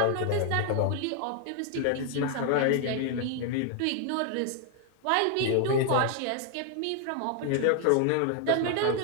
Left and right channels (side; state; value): both; different; correlation 0.00